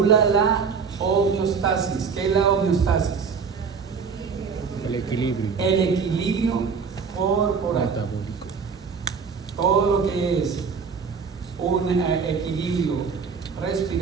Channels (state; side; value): quieter; left; 5.7 dB